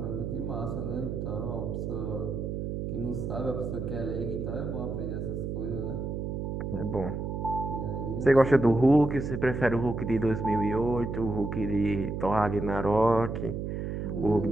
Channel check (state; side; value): noise; right; hum, 3 dB below the sound